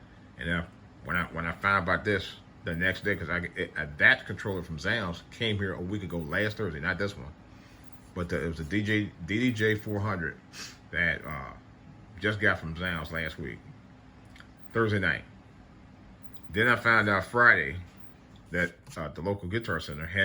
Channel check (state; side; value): identical; both; correlation 1.00